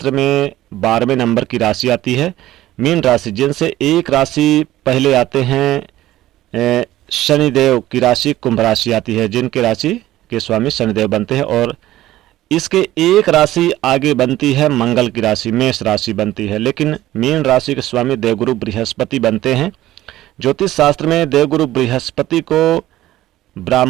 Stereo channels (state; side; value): quieter; left; 15.0 dB